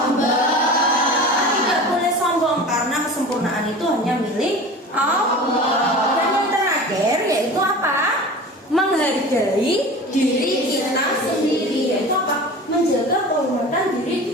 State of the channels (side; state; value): both; normal; correlation 0.36